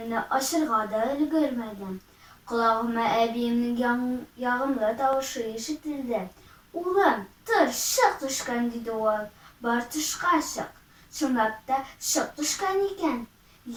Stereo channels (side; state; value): both; identical; correlation 1.00